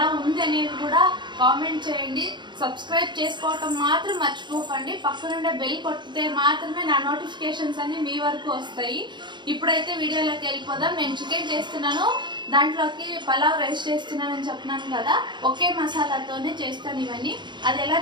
ఉంది అనేది కూడా కామెంట్ చేయండి. సబ్స్క్రైబ్ చేసుకోవటం మాత్రం మర్చిపోకండి. పక్కనుండే బెల్ కొట్టితే మాత్రమే నా నోటిఫికేషన్స్ అన్ని మీ వరకు వస్తాయి. ఇప్పుడైతే వీడియోలోకి వెళ్ళిపోదాం. నేను చికెన్ చేస్తున్నాను, దాంట్లోకి పలావ్ రైస్ చేస్తున్నానని చెప్పినాను కదా. ఒకే మసాలాతోనే చేస్తాను ఇవన్నీ. అది ఎలా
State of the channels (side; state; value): left; late; 0.22 ms